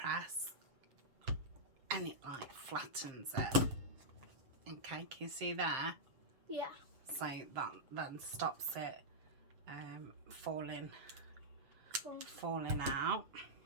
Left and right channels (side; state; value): left; late; 7.7 ms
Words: and it like flattens it. Okay, can you see there? Yeah. So that then stops it falling out.